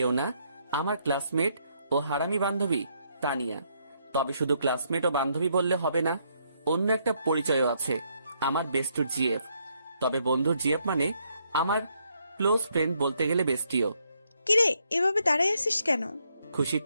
না, আমার ক্লাসমেট ও হারামি বান্ধবী তানিয়া। তবে শুধু ক্লাসমেট ও বান্ধবী বললে হবে না, অন্য একটা পরিচয়ও আছে, আমার বেস্টুর জিএফ। তবে বন্ধুর জিএফ মানে আমার ক্লোজ ফ্রেন্ড, বলতে গেলে বেস্টিও। কিরে এভাবে দাঁড়ায় আছিস কেন? খুশির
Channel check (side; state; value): both; inverted; correlation -0.74